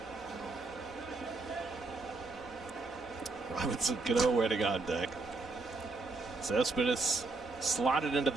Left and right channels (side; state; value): left; quieter; 3.6 dB